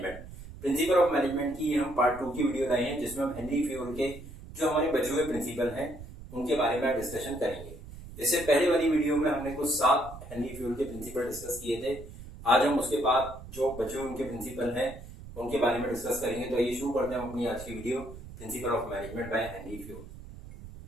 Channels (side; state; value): right; noise; rumble, 14 dB below the sound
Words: Principle of management की हम पार्ट 2 की वीडियो लाए हैं, जिसमें हम हेनरी फ्यूल के जो हमारे बचे हुए प्रिंसिपल हैं उनके बारे में डिस्कशन करेंगे। इससे पहले वाली वीडियो में हमने कुछ 7 हेनरी फ्यूल के प्रिंसिपल डिस्कस किए थे। आज हम उसके बाद जो बचे हुए उनके प्रिंसिपल हैं उनके बारे में डिस्कस करेंगे। तो आइए शुरू करते हैं अपनी आज की video, principle of management by Henry fuel.